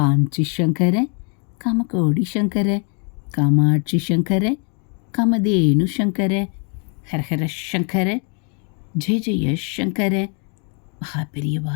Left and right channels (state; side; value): quieter; right; 39.3 dB